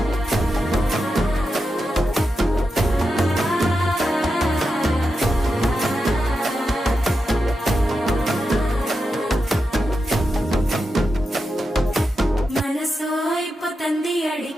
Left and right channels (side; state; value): both; normal; correlation 0.88